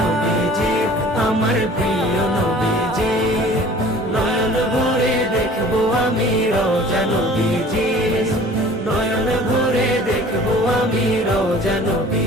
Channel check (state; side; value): normal; both; correlation 0.47